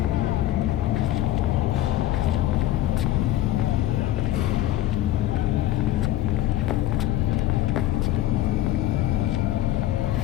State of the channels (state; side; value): quieter; right; 14.0 dB